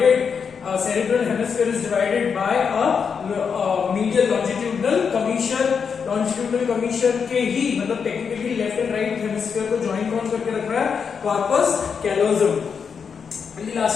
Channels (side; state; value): right; quieter; 6.3 dB